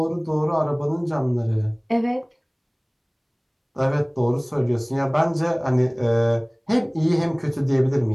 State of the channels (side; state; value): both; identical; correlation 1.00